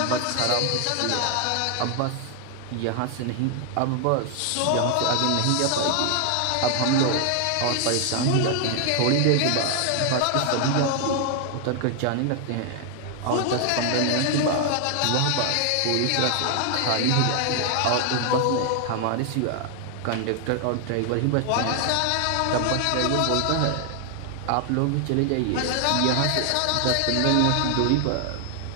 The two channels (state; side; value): different; both; correlation 0.00